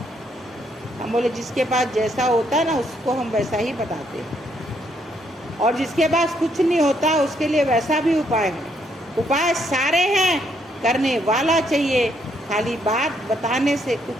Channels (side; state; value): both; normal; correlation 0.73